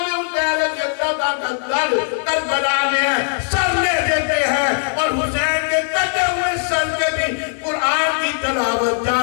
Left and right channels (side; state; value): right; silent; digital silence